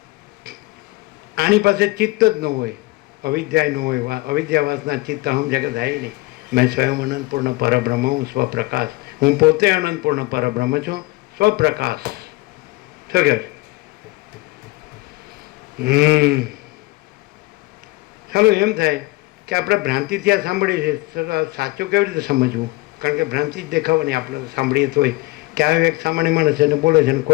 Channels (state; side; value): quieter; right; 21.9 dB